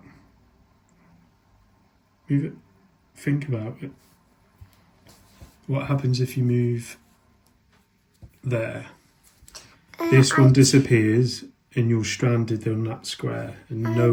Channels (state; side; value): identical; both; correlation 1.00